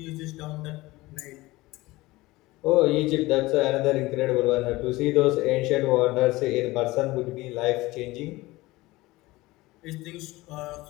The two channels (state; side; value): quieter; right; 19.9 dB